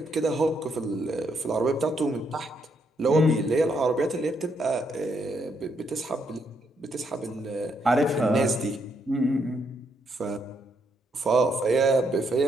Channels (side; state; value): both; normal; correlation 0.76